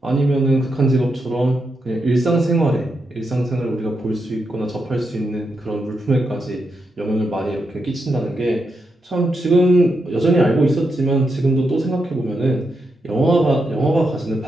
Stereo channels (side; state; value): both; normal; correlation 0.84